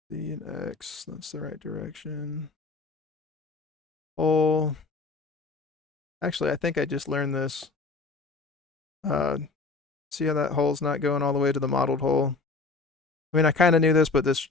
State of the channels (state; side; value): quieter; right; 3.8 dB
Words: B and X, that's the right direction. Hole. Actually, I think I just learned this. See how that hole's not going all the way to the modeled hole? I mean, I kind of knew this, but